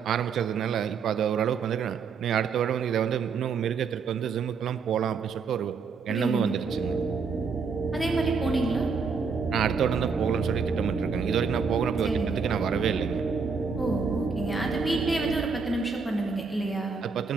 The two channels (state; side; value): quieter; left; 5.3 dB